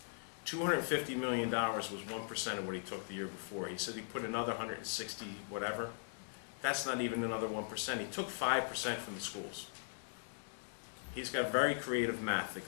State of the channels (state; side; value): silent; right; digital silence